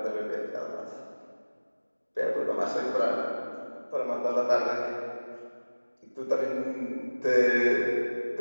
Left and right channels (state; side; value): inverted; both; correlation -1.00